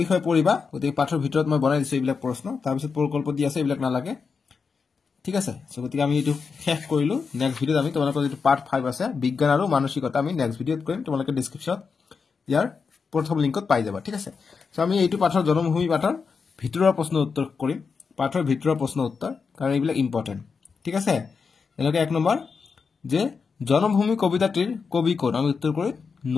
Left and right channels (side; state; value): right; quieter; 5.3 dB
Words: বিষয়ে পঢ়িবা গতিকে পাঠৰ ভিতৰত মই বনাই দিছো এইবিলাক প্ৰশ্ন তাৰ পিছত প্ৰকল্প দি আছে এইবিলাক নালাগে ঠিক আছে সো গতিকে আমি এইটো শেষ কৰিলো নেক্সট ভিডিওত আমি তোমালোকৰ যেটো পাৰ্ট 5 আছে বিজ্ঞান আৰু মানসিকতা আমি নেক্সট ভিডিওত কৰিম তোমালোকে ডেসক্ৰিপচনত ইয়াৰ প্ৰথম লিংকত পাই যাবা ঠিক আছে সো আমি এইটো পাঠৰ জনমভূমি পাঠৰ ভিতৰৰ প্ৰশ্ন উত্তৰ কৰিম পাঠৰ ভিতৰৰ প্ৰশ্ন উত্তৰ কাৰণ এইবিলাক ইম্পৰ্টেন্ট ঠিক আছে এনেকৈ 1 নম্বৰ যে জনমভূমি কবিতাটির কবি কোন আমি উত্তর করি